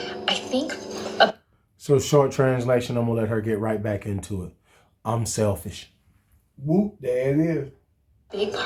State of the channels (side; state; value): both; identical; correlation 1.00